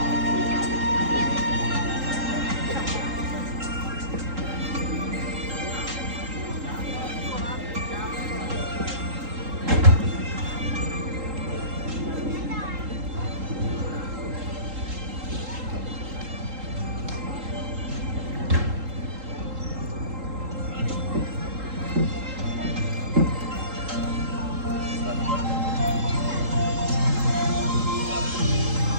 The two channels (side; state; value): left; late; 3.8 ms